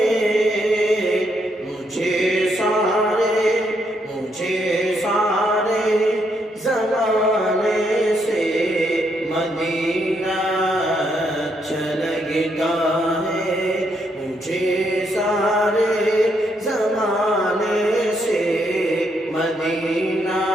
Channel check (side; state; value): both; normal; correlation 0.76